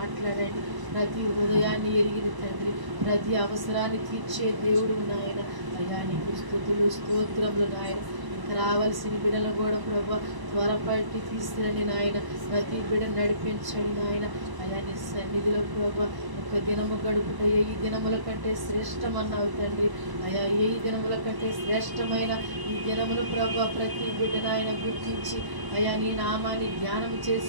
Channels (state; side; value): late; left; 1.0 ms